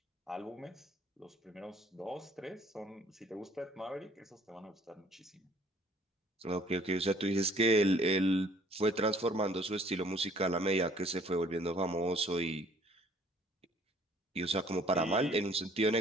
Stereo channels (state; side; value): normal; both; correlation 0.57